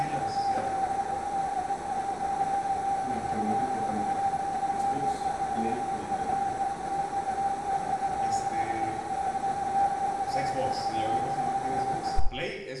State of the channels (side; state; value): both; identical; correlation 1.00